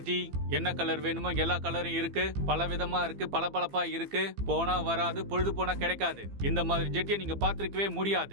என்ன கலர் வேணுமோ எல்லா கலரும் இருக்கு, பல விதமா இருக்கு, பளபளப்பா இருக்கு. போனா வராது, பொழுது போனா கிடைக்காது. இந்த மாதிரி ஜெட்டியை நீங்க பார்த்திருக்கவே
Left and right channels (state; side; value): late; left; 15 ms